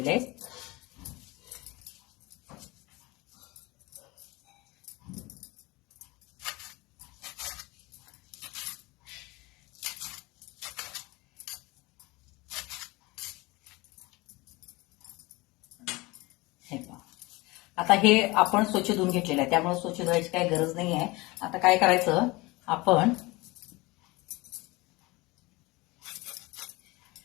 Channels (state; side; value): quieter; right; 23.0 dB